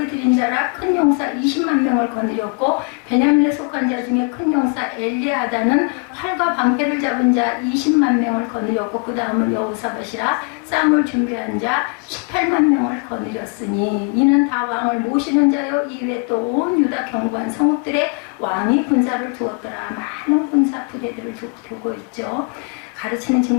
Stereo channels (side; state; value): right; quieter; 35.2 dB